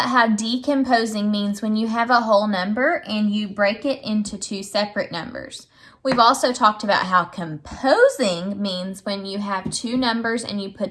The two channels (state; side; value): identical; both; correlation 1.00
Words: how decomposing means when you have a whole number and you break it into two separate numbers. We've also talked about how composing means when you have two numbers and you